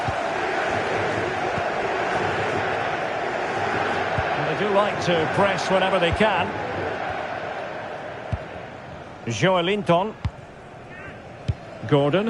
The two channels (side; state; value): both; identical; correlation 1.00